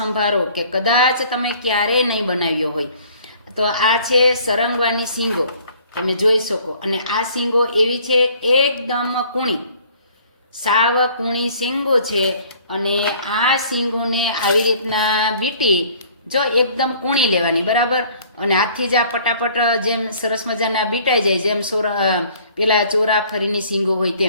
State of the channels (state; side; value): inverted; both; correlation -0.55